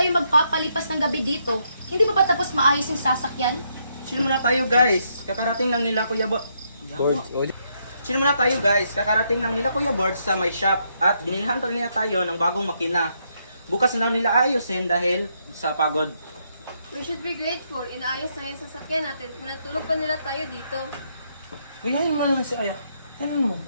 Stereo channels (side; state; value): both; inverted; correlation -0.76